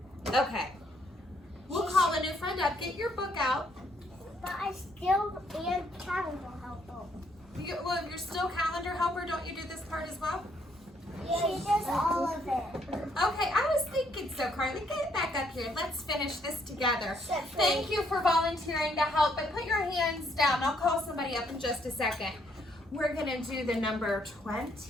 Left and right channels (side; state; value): both; normal; correlation 0.70